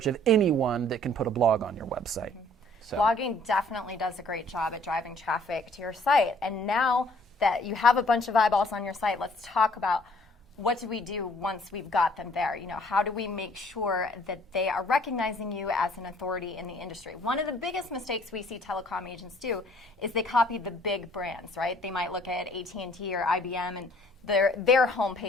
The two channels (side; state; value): both; normal; correlation 0.59